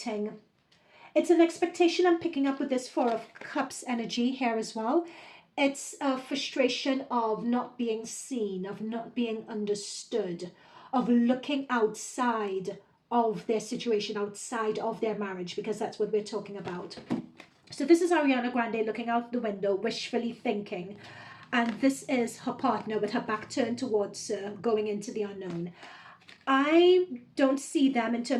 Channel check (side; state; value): both; identical; correlation 1.00